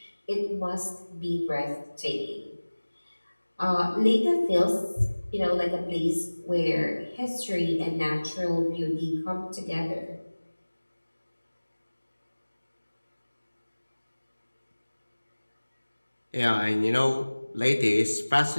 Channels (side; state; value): both; inverted; correlation -1.00